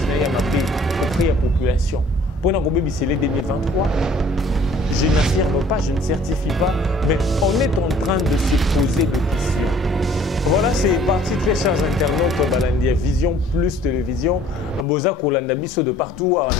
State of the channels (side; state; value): both; normal; correlation 0.54